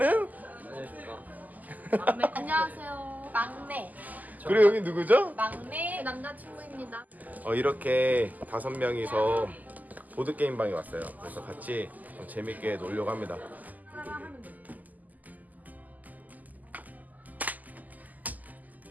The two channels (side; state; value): left; late; 0.081 ms